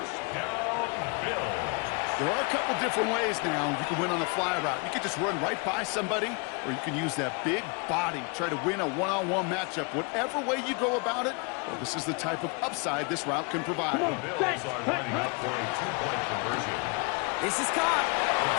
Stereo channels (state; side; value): quieter; right; 32.2 dB